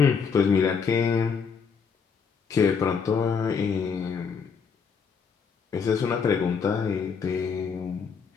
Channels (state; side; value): quieter; right; 6.0 dB